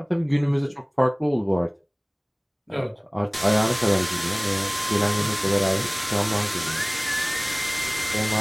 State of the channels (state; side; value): identical; both; correlation 1.00